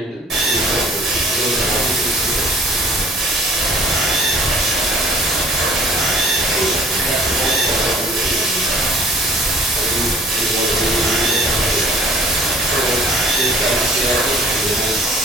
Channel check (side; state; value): both; normal; correlation 0.53